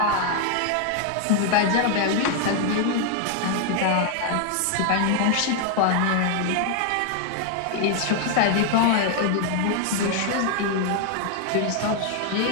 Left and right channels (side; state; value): both; different; correlation 0.00